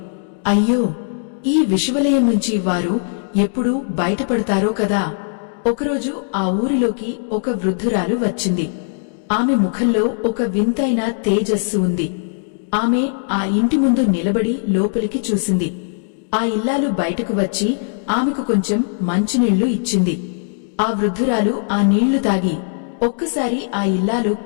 అయ్యో, ఈ విషవలయం నుంచి వారు ఎప్పుడు బయటపడతారో కదా. ఒకరోజు ఆ ఊరిలోకి ఒక వృద్ధురాలు వచ్చింది. ఆమె ముఖంలో ఒక వింతైన తేజస్సు ఉంది. ఆమె ఆ ఇంటి ముందు నిలబడి లోపలికి చూసింది. ఆ ఇల్లాలు బయటకు వచ్చి ఆమెకు కొంచెం మంచినీళ్లు ఇచ్చింది. ఆ వృద్ధురాలు ఆ నీళ్లు తాగి ఒక్కసారి ఆ ఇల్లాలు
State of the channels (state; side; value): silent; right; digital silence